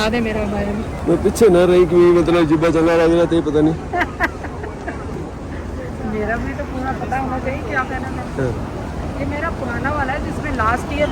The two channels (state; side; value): identical; both; correlation 1.00